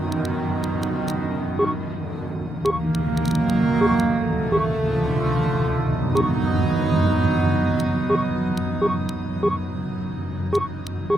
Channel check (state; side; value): normal; both; correlation 0.82